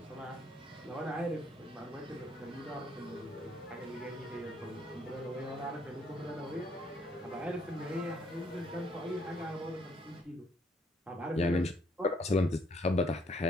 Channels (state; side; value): normal; both; correlation 0.68